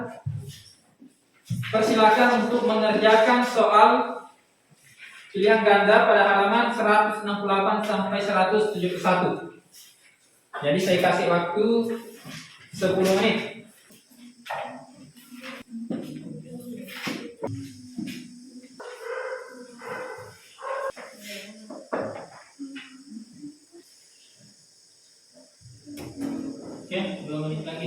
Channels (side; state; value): both; identical; correlation 1.00